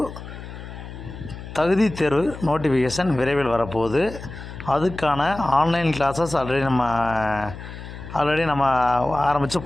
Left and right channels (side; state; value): left; noise; hum, 12 dB below the sound